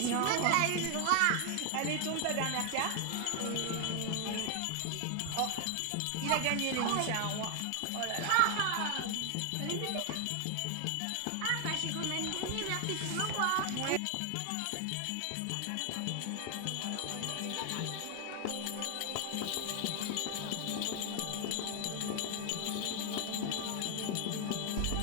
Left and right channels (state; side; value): different; both; correlation 0.00